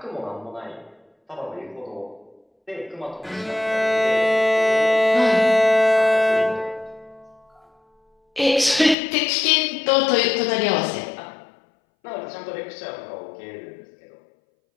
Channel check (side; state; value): right; drops out; at 9.0 s